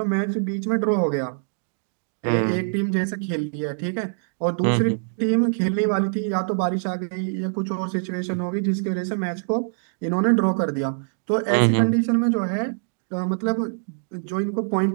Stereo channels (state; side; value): silent; left; digital silence